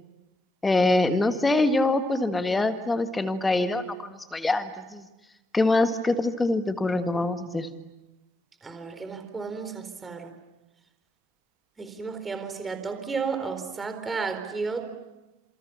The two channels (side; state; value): both; normal; correlation 0.83